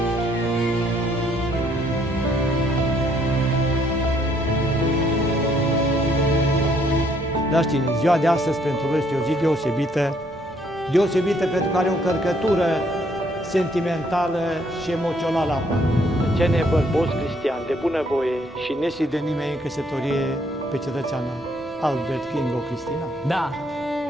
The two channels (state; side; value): normal; both; correlation 0.67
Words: Dragi tineri, ziua de astăzi pentru voi este o zi deosebită pentru că are o încărcătură sentimentală și emoțională aparte. Cene bărboți cristiani de bunăvoie și nesi de nimeni în căsătorie pe cetățeană Albert Kingo Cristina. Da.